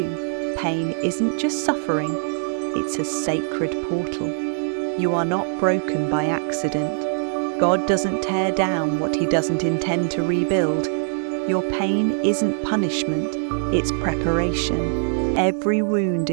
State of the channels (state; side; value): silent; left; 64 dB below the other